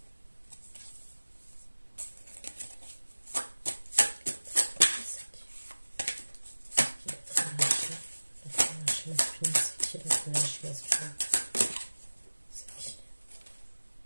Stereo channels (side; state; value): both; inverted; correlation -1.00